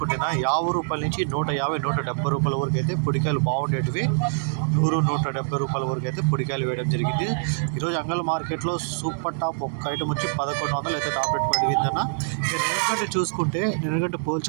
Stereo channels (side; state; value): left; silent; 62 dB below the other